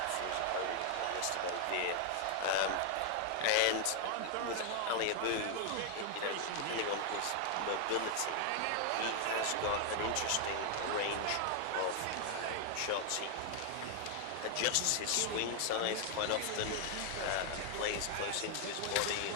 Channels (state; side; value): different; both; correlation 0.00